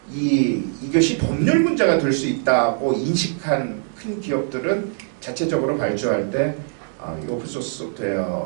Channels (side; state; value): left; silent; digital silence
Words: 이것이 법률 문제가 될 수 있다고 인식한 큰 기업들은 자체적으로 발주할 때 이 오픈소스